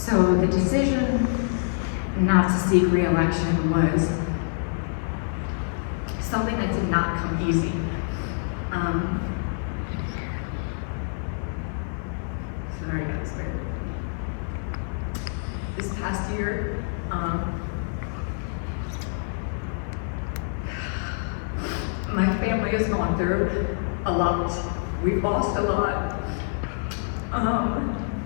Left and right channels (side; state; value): right; silent; 61 dB below the other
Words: the decision not to seek re-election was something that did not come easy. Sorry, guys, bear with me. This past year, my family has gone through a lot. We've lost a lot.